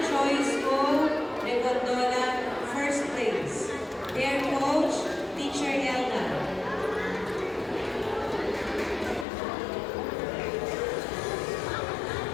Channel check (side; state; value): right; drops out; at 9.2 s